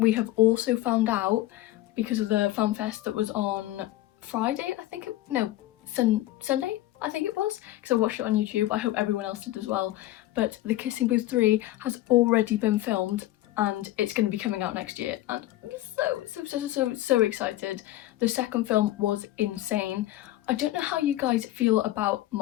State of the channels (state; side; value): quieter; right; 15.6 dB